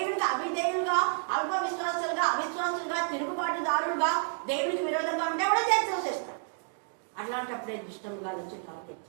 అవిధేయులుగా, అల్ప విశ్వాసులుగా, అవిశ్వాసులుగా, తిరుగుబాటుదారులుగా, దేవునికి విరోధంగా ఉంటే కూడా చేస్తాడు. అట్లాంటప్పుడే దుష్టముగా వచ్చి టార్గెట్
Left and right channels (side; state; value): left; silent; 58 dB below the other